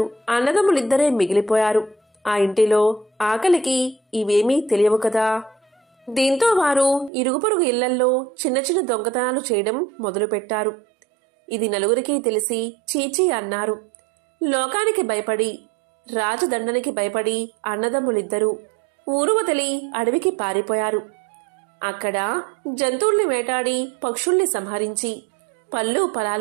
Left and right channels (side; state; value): left; drops out; at 7.1 s